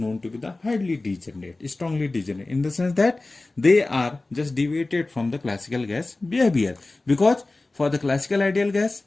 to be the highly degenerate, strongly degenerate, in the sense that they are just deviated from the classical gas behavior. Because for the classical ideal gas,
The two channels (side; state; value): right; quieter; 3.1 dB